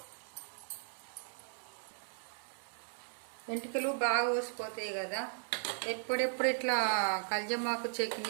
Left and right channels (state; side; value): silent; left; 53 dB below the other